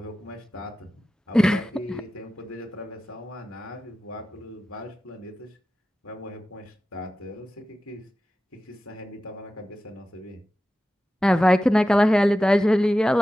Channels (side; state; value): both; normal; correlation 0.94